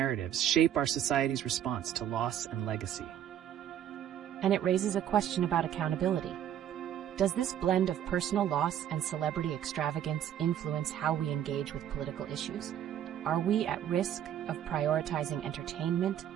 shape our society's response to loss and legacy? And it raises a question about accountability. Does this blend of personal loss and celebrity extravagance influence how we engage with political issues? Are we at risk of prioritizing entertainment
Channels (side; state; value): left; quieter; 10.4 dB